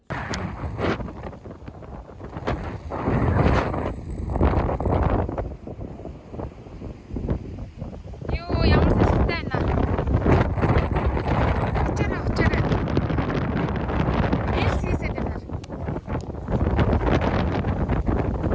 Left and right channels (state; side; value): identical; both; correlation 1.00